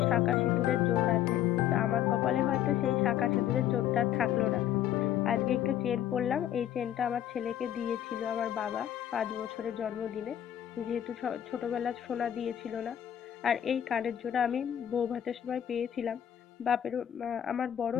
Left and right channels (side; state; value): right; quieter; 10.8 dB